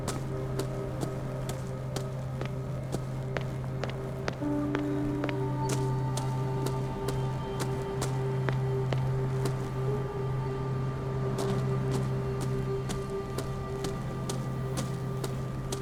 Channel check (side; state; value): both; identical; correlation 1.00